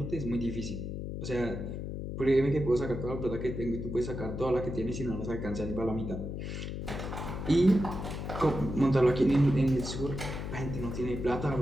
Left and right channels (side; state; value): left; noise; hum, 5 dB below the sound